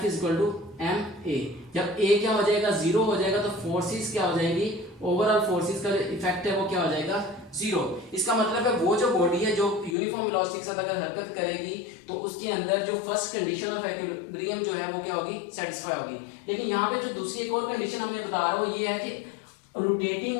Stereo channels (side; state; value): right; drops out; at 10.0 s